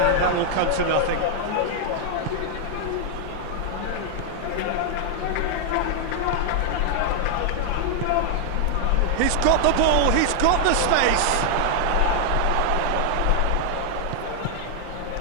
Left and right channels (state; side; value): different; both; correlation 0.00